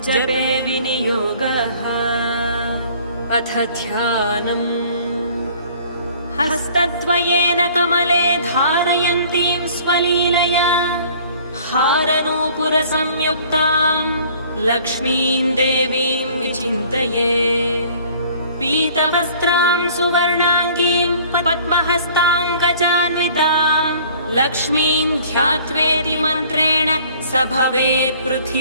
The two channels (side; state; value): both; inverted; correlation -0.53